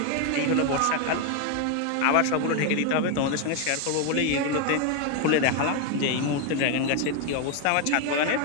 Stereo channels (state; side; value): different; both; correlation 0.01